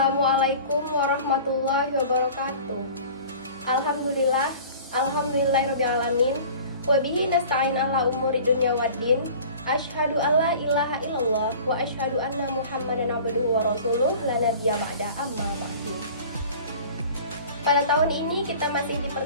warahmatullahi wabarakatuh. Alhamdulillahirrabbilalamin. Wabihi nasta'in ala umuri dunya waddin. Asyhadu alla ilaha illallah wa asyhadu anna Muhammadan abduhu wa rasuluh la nabiyya ba'da amma ba'du. Pada tahun ini kita masih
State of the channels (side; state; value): both; inverted; correlation -0.43